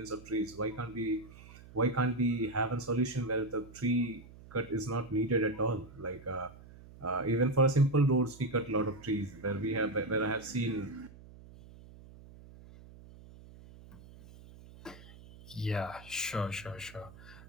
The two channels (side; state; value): right; noise; hum, 19 dB below the sound